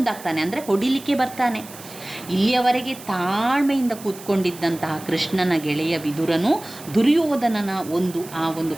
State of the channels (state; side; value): noise; right; hiss, 17 dB below the sound